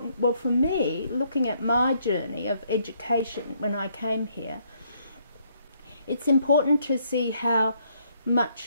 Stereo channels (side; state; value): both; inverted; correlation -0.70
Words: well, for me, looking at my journey of education when I came here, it's important to see how